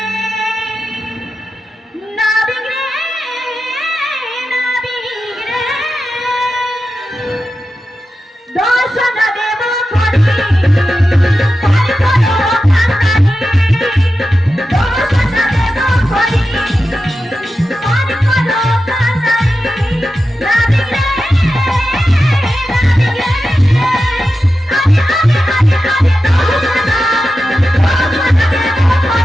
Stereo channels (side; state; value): both; normal; correlation 0.91